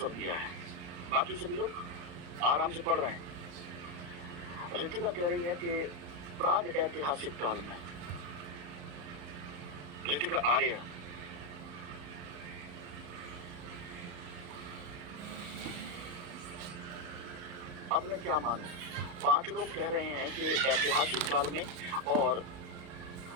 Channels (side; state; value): left; late; 35 ms